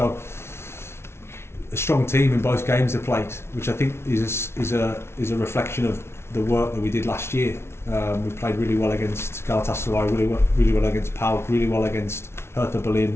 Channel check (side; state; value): right; late; 0.12 ms